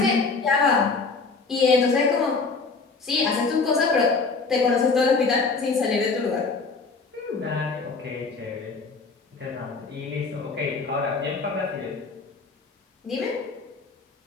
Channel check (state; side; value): quieter; right; 4.3 dB